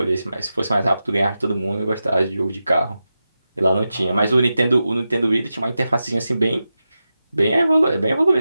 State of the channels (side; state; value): both; inverted; correlation -0.91